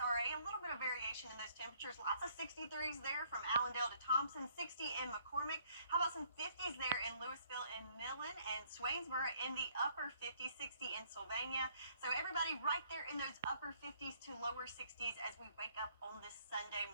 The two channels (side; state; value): both; inverted; correlation -0.65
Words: a little bit of variation in those temperatures. Lots of 63s there from Allendale to Thompson, 60 in McCormick. How about some 50s there in Louisville and Millen, and Swainsboro in the upper 50s, 60 in Sylvania. So everybody right there in those upper 50s to lower 60s as we wake up on this Sunday